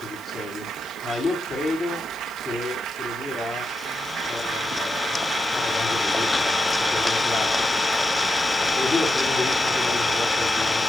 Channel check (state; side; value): noise; left; hiss, 24 dB below the sound